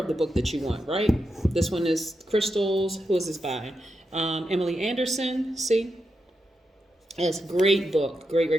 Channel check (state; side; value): normal; both; correlation 0.86